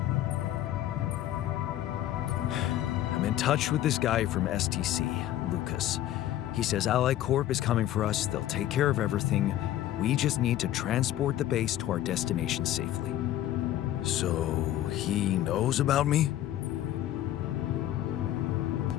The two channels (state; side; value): quieter; right; 13.0 dB